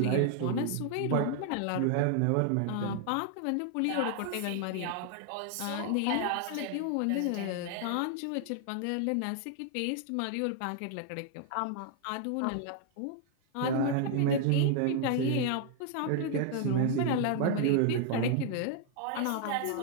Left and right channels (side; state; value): both; different; correlation 0.00